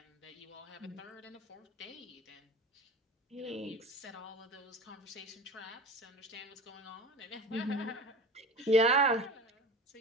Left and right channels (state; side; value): normal; both; correlation 0.33